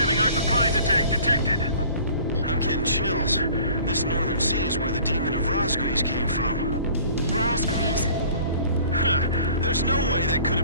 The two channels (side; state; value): both; inverted; correlation -0.50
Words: our surprise attack detected. I'm getting chills. This northern sea is where the demon of Razgriz came from. Razgriz. Huh. There's no way that could have